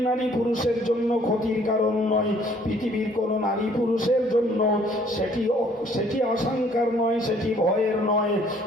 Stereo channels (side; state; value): both; normal; correlation 0.60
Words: নারী পুরুষের জন্য ক্ষতির কারণ নয়, পৃথিবীর কোনো নারী পুরুষের জন্য সেটি আশঙ্কার নয়, সেটি ভয়ের নয়,